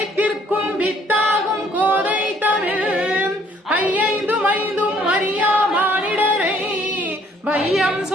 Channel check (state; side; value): normal; both; correlation 0.62